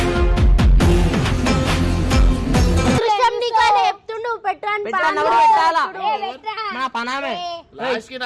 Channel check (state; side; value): identical; both; correlation 1.00